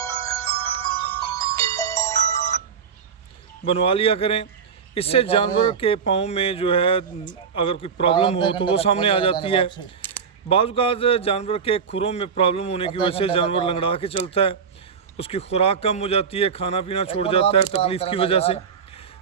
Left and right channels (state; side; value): quieter; left; 6.5 dB